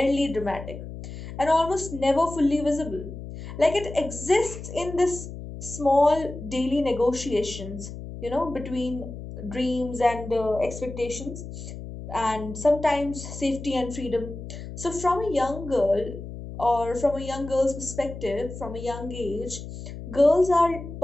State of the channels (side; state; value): left; noise; hum, 10 dB below the sound